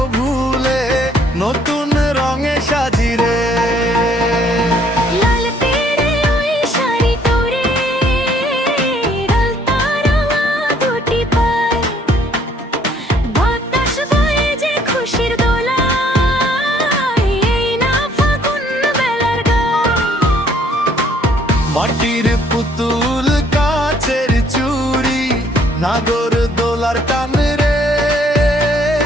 ভুলে নতুন রঙে সাজি রে। লাল তেরে ওই শাড়ি তোরে, আলতা রঙা দুটি পায়, বাতাস বয়ে যে খুশির দোলায়, এই না ফাগুন বেলার গায়। মাটির পুতুল কাচের চুড়ি নাগর দোলার টান রে।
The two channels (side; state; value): both; normal; correlation 0.63